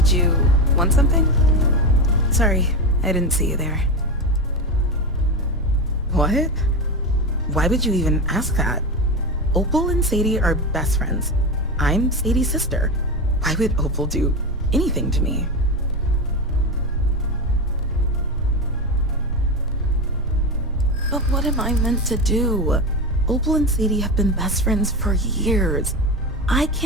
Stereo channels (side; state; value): both; normal; correlation 0.18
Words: you want something? Sorry, I didn't see you there. What? Why would you even ask that? Opal and Sadie are best friends. I'm Sadie's sister. Why would Opal do anything to me? But what am I meant to do? Opal and Sadie have been best friends for years. I